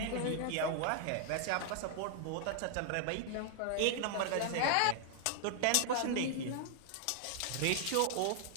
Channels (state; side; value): different; both; correlation 0.00